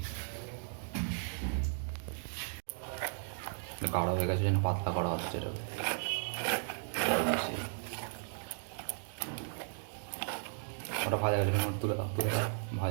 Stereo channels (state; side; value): silent; left; digital silence